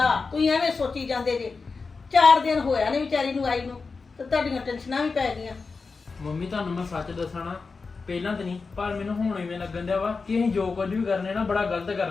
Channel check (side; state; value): right; quieter; 4.5 dB